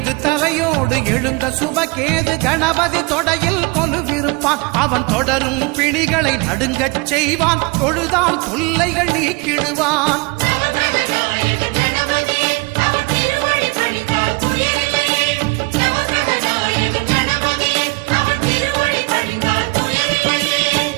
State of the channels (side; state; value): left; quieter; 26.7 dB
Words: தலையோடு எழுந்த சுபகேது கணபதி தொடையில் கொலுவிருப்பான். அவன் தொடரும் பிணிகளை நடுங்கச் செய்வான். தொழுதால் தொல்லைகள் நீக்கிடுவான்.